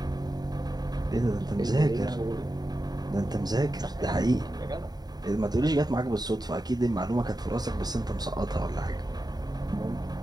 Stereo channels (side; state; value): left; late; 0.19 ms